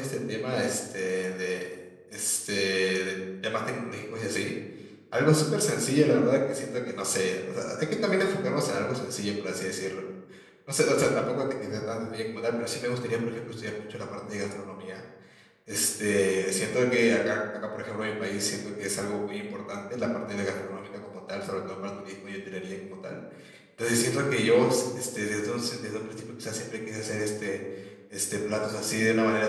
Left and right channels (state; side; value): identical; both; correlation 1.00